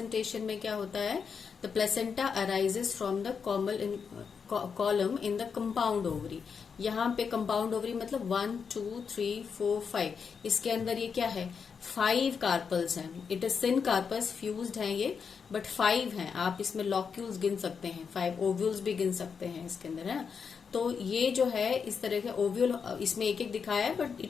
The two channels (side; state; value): right; quieter; 6.1 dB